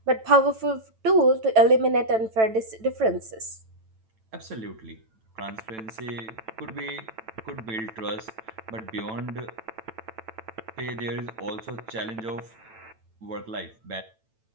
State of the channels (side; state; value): left; late; 9.0 ms